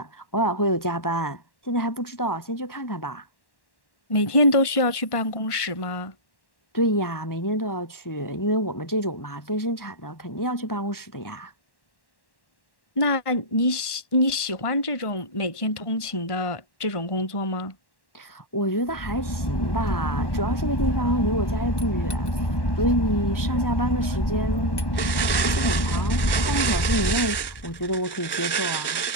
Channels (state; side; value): late; right; 1.1 ms